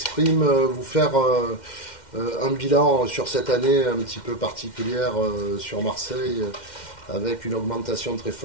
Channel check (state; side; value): late; right; 2.1 ms